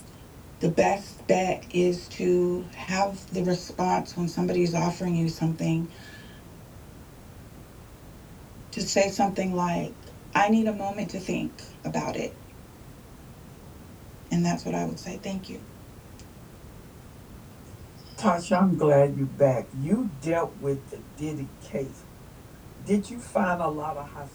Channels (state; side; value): identical; both; correlation 1.00